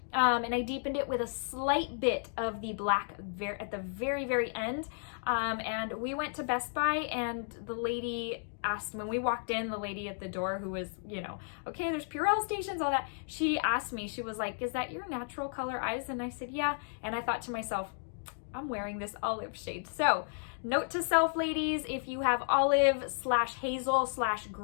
And I deepened it with a slight bit of the black at the very, very end. And we went to Best Buy, and the lady asked, when we walked in, the lady at the door who was, you know, okay, there's Purell stations, all that. She asked me, she was like, is that your natural color eyes? And I said, yeah. And I thought to myself, I'm wearing this olive shade. So note to self, ladies, if you have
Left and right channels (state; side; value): silent; right; digital silence